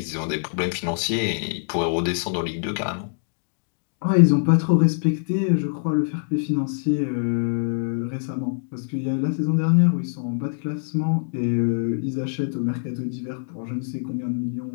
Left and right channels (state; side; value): silent; right; digital silence